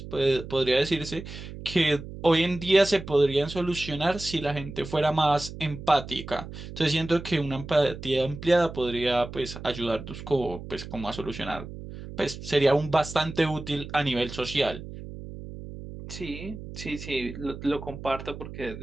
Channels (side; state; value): right; noise; hum, 12 dB below the sound